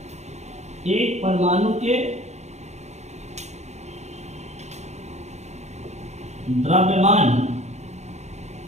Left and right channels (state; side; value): late; left; 0.33 ms